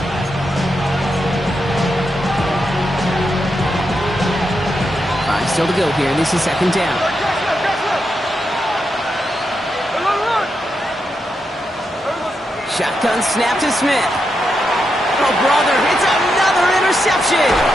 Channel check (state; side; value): normal; both; correlation 0.84